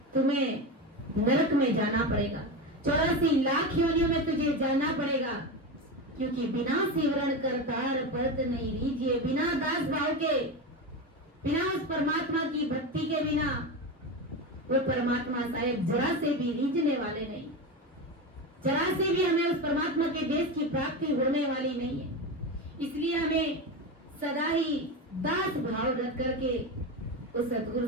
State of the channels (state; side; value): normal; both; correlation 0.20